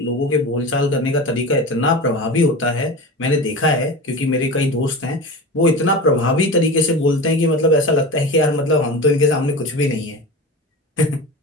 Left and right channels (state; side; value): normal; both; correlation 0.29